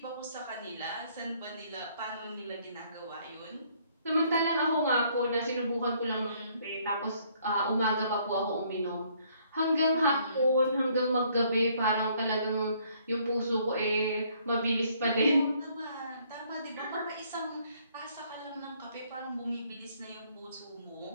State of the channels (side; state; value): both; inverted; correlation -0.65